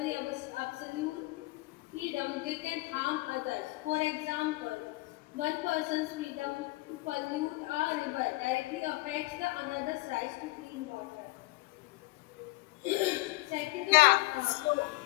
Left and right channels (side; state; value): right; quieter; 22.0 dB